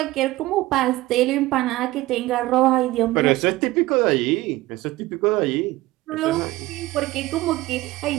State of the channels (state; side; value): quieter; left; 18.3 dB